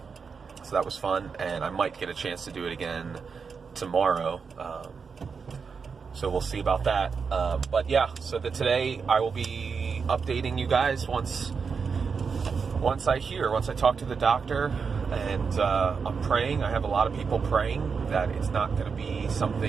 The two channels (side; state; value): left; quieter; 5.6 dB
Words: So that was fun, and I might get a chance to do it again tomorrow. So we'll see about that. But yeah, so today I will be updating you guys once I talk to the doctor. And I'm praying. I have a lot of people praying that it's not going to be